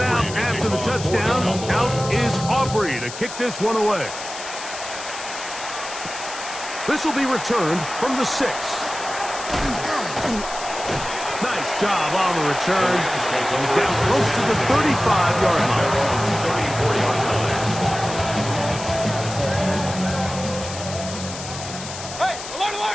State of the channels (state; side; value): noise; left; hiss, 10 dB below the sound